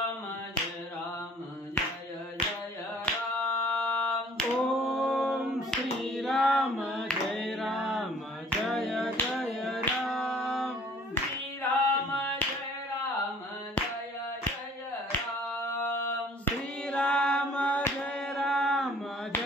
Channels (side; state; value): both; normal; correlation 0.54